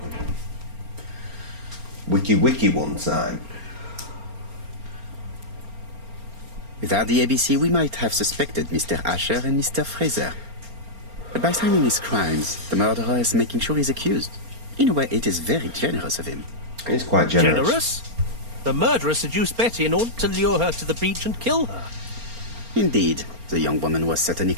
Wiki one time. Without the ABC, we might have suspected Mr. Asher and Mr. Fraser. But by signing his crimes, the murderer is making sure he's accused. In a way, it is very generous of him. He's quite generous. Generous? The murderer seduced Betty in order to lure her to the beach and kill her. Indeed, the young woman was certainly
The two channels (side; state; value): left; late; 4.3 ms